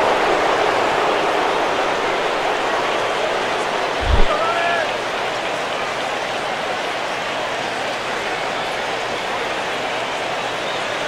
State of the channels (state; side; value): identical; both; correlation 1.00